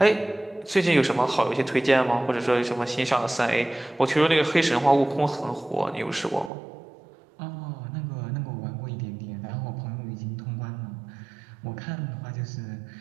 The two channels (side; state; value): left; drops out; at 6.5 s